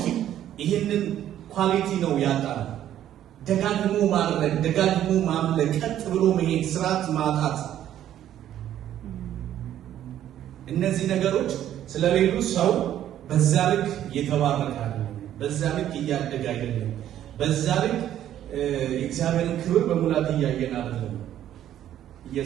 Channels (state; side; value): quieter; left; 11.5 dB